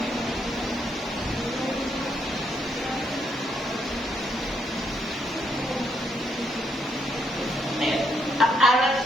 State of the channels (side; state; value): both; normal; correlation 0.75